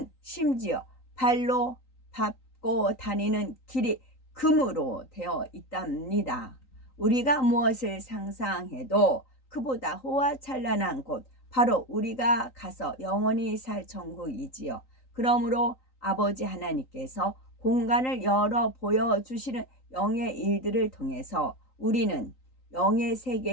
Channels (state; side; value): late; right; 3.9 ms